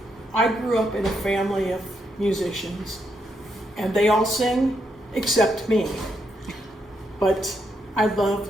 I grew up in a family of musicians, and they all sing except me. But I love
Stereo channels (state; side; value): normal; both; correlation 0.79